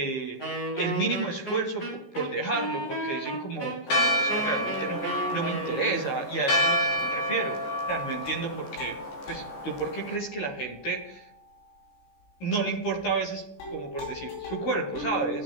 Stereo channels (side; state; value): right; late; 14 ms